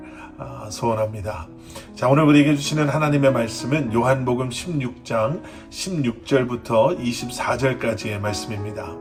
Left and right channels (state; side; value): identical; both; correlation 1.00